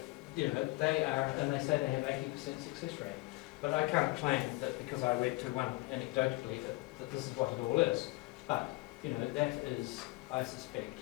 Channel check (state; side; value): quieter; right; 22.3 dB